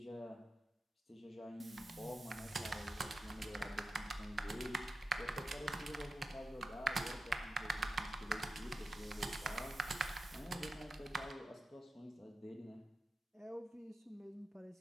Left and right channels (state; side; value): normal; both; correlation 0.89